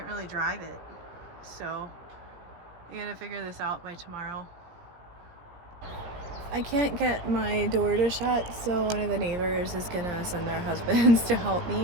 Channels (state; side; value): late; left; 17 ms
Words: really drive it. So I gotta figure this out by tomorrow. I can't get my door to shut, so one of the neighbors is gonna send their husbands to help